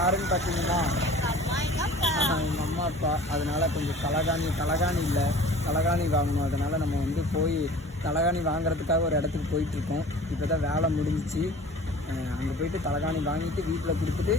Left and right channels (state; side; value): normal; both; correlation 0.44